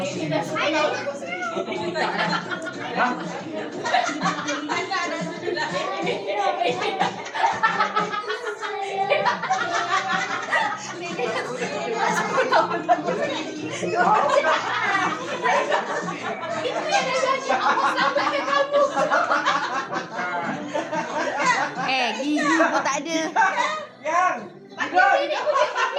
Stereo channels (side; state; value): both; identical; correlation 1.00